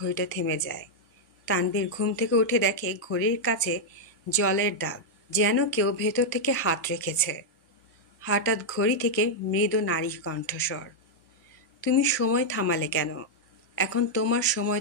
থেমে যায়। তানভীর ঘুম থেকে উঠে দেখে ঘড়ির কাছে জলের দাগ, যেন কেউ ভেতর থেকে হাত রেখেছে। হঠাৎ ঘড়ি থেকে মৃদু নারী কণ্ঠস্বর, তুমি সময় থামালে কেন? এখন তোমার সময়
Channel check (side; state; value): both; normal; correlation -0.03